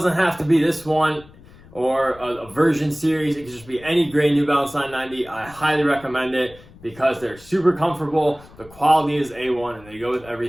have to be this one or a version series. It could just be any gray New Balance 990. I highly recommend it, because they're super comfortable, the quality is A1, and they go with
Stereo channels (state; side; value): noise; left; rumble, 22 dB below the sound